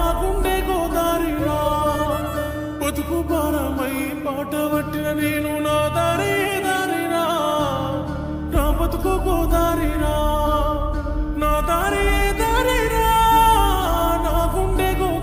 గుండె గోదారిరా. బతుకు భారమై పాట పట్టిన నేను నా దారి దారిరా, నా బతుకు గోదారిరా, నా దారి దారిరా, నా గుండె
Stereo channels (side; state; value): both; identical; correlation 1.00